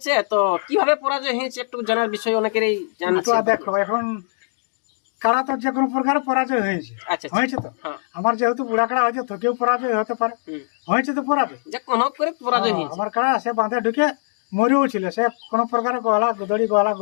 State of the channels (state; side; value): silent; right; digital silence